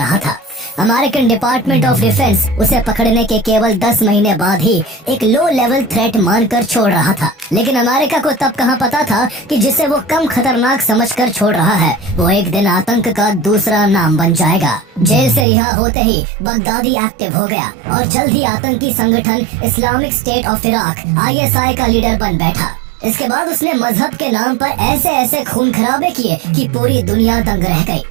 था। अमेरिकन डिपार्टमेंट ऑफ डिफेंस उसे पकड़ने के केवल 10 महीने बाद ही एक लो लेवल थ्रेट मानकर छोड़ रहा था, लेकिन अमेरिका को तब कहाँ पता था कि जिसे वो कम खतरनाक समझकर छोड़ रहा है वो एक दिन आतंक का दूसरा नाम बन जाएगा। जेल से रिहा होते ही बगदादी एक्टिव हो गया और जल्द ही आतंकी संगठन Islamic state of Iraq ISI का लीडर बन बैठा। इसके बाद उसने मजहब के नाम पर ऐसे ऐसे खून खराबे किए कि पूरी दुनिया दंग रह गई।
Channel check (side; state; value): left; drops out; at 15.5 s